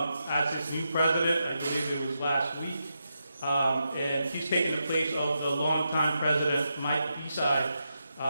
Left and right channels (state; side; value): inverted; both; correlation -0.86